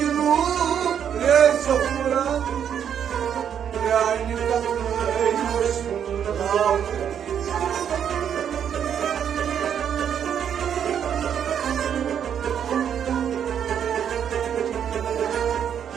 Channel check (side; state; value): left; quieter; 8.6 dB